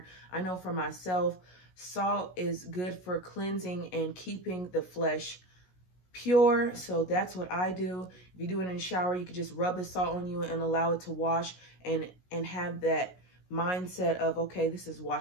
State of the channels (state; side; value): late; right; 16 ms